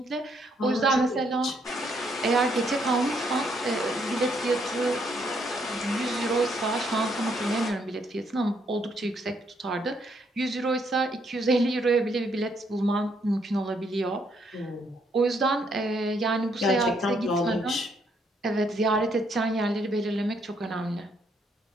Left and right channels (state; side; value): normal; both; correlation 0.72